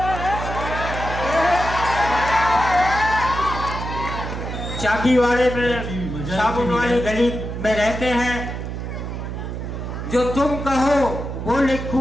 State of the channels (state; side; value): noise; right; hum, 6 dB below the sound